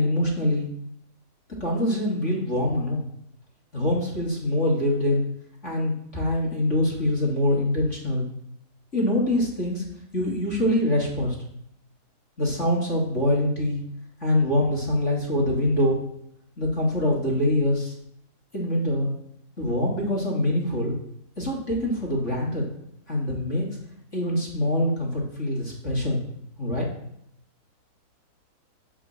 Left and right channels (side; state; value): right; late; 3.5 ms